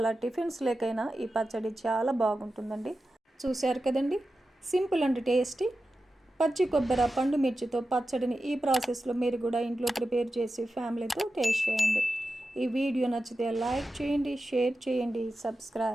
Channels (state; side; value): normal; both; correlation 0.92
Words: టిఫిన్స్ లేకైనా ఈ పచ్చడి చాలా బాగుంటుందండి. చూశారు కదండి, సింపుల్ అండ్ టేస్టీ పచ్చి కొబ్బరి పండు మిర్చితో పచ్చడిని ఈ ప్రాసెస్లో మీరు కూడా ఇంట్లో ప్రిపేర్ చేసి ఫ్యామిలీతో టేస్ట్ చేయండి. ఈ వీడియో నచ్చితే లైక్ చేయండి, షేర్ చేయండి,